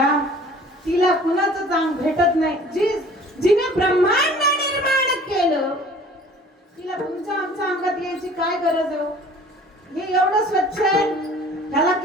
तिला कुणाचं चांग भेटत नाही. जिने ब्रह्मांड निर्माण केलं तिला तुमच्या आमच्या अंगात यायची काय गरज आहे? हे एवढं स्वच्छ आहे, ह्याला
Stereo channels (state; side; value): normal; both; correlation 0.49